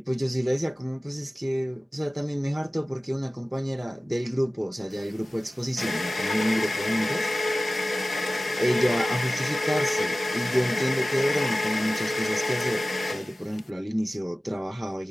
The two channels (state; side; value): normal; both; correlation 0.97